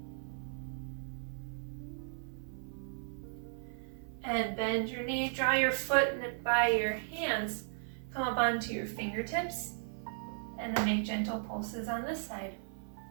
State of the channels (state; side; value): silent; left; 54 dB below the other